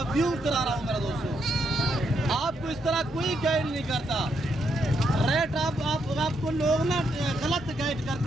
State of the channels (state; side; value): normal; both; correlation 0.78